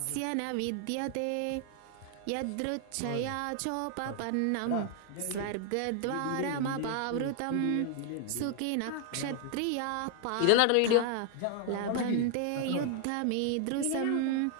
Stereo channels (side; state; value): both; different; correlation 0.00